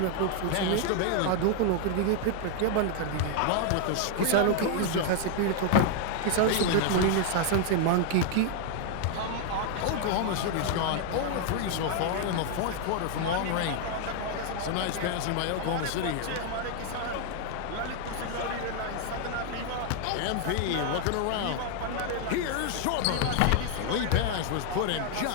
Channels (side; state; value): both; different; correlation 0.00